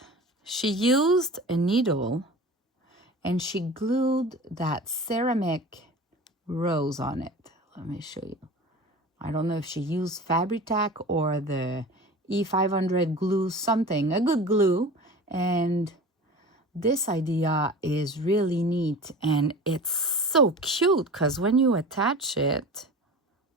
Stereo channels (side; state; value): both; normal; correlation 0.36